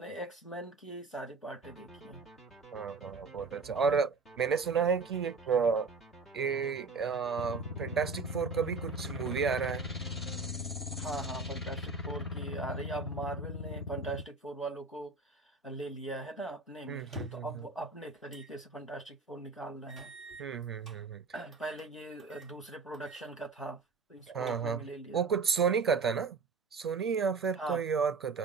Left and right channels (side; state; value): left; quieter; 4.3 dB